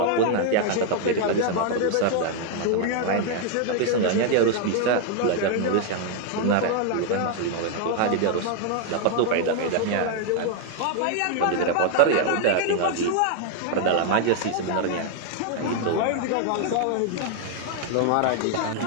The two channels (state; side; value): different; both; correlation 0.00